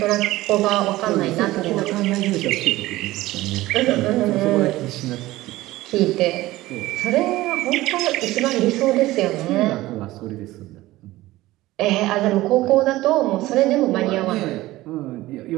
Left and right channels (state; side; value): quieter; left; 17.4 dB